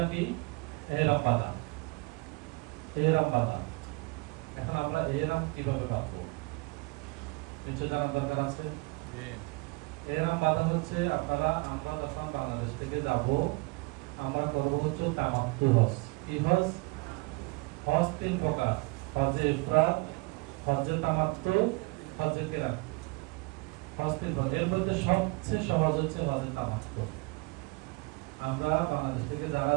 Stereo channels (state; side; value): quieter; left; 26.4 dB